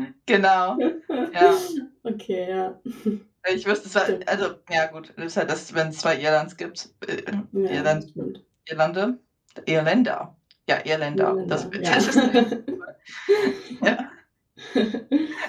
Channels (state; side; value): identical; both; correlation 1.00